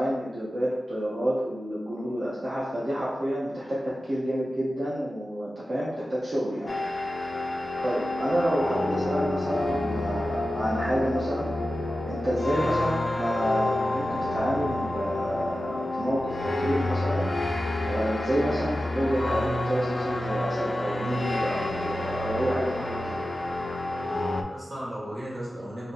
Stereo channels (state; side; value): normal; both; correlation 0.93